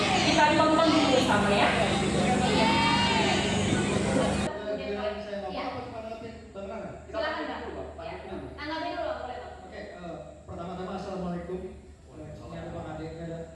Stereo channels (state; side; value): identical; both; correlation 1.00